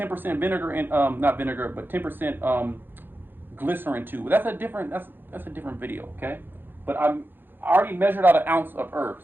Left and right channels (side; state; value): left; late; 0.097 ms